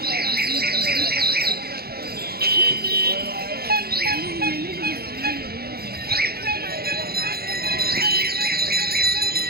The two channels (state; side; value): late; left; 0.45 ms